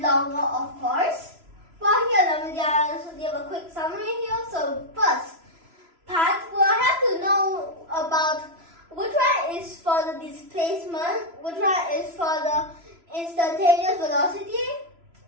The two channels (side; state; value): left; late; 3.0 ms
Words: longer, of course. Well, here, let me just give a quick summary here. So first part, we'll have to know about which one is for the displacement, which one is for the instantaneous velocity.